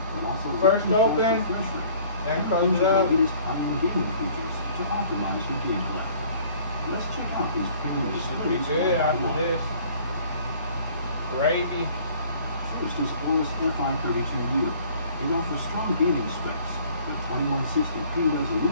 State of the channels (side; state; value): both; inverted; correlation -0.53